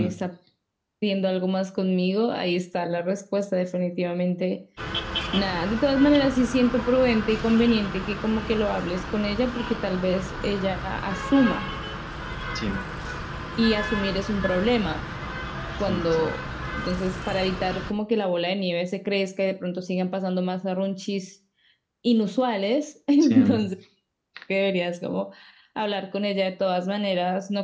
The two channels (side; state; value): both; identical; correlation 1.00